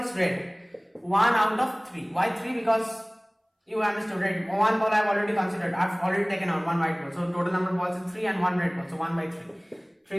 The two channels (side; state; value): both; identical; correlation 1.00